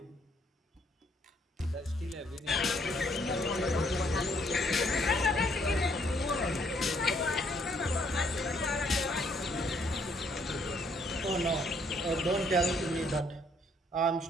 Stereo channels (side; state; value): both; normal; correlation 0.68